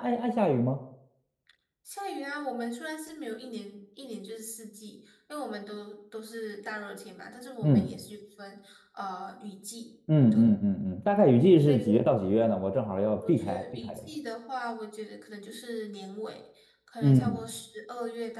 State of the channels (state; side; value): identical; both; correlation 1.00